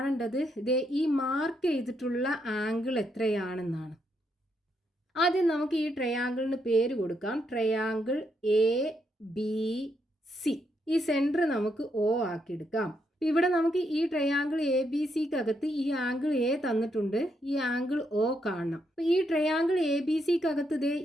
ഈ മാർക്ക് ചെയ്തിട്ടുള്ള ആംഗിൾ എത്രയാണെന്നാണ്. ആദ്യം നമുക്ക് ഈ ട്രയാങ്കിളിന് പേര് കൊടുക്കാം. Triangle A B C. ഈ സെന്റർ നമുക്ക് O ആക്കിയെടുക്കാം. ഇവിടെ നമുക്ക് ഈ ട്രയാങ്കിൾ എ ബി സിക്കകത്ത് ഈ ആംഗിൾ എ തന്നിട്ടുണ്ട്, ഈ ആംഗിൾ O കാണണം. അപ്പൊ ഈ ട്രയാങ്കിൾ എ ബി സിക്കകത്ത്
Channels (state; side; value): normal; both; correlation 0.78